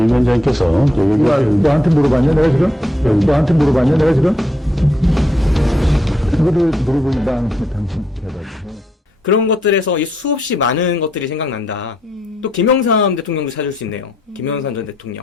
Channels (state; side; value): normal; both; correlation 0.76